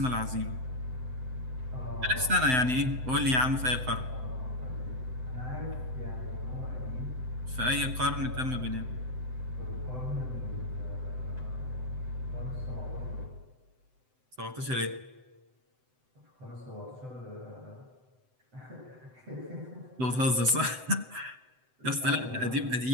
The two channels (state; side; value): late; left; 7.8 ms